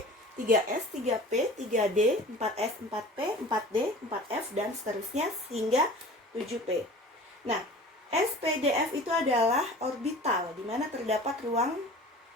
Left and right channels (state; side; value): normal; both; correlation 0.41